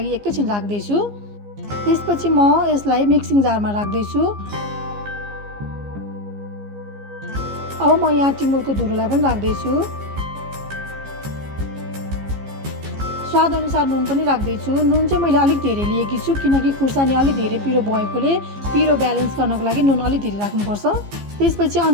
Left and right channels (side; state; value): left; late; 15 ms